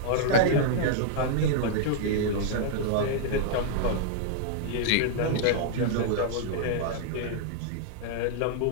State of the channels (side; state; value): both; different; correlation -0.01